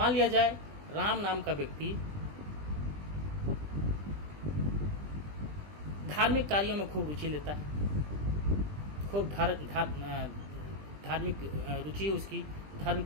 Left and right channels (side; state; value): left; late; 20 ms